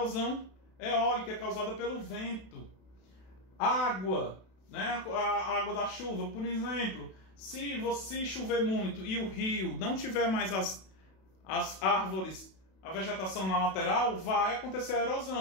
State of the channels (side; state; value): right; late; 32 ms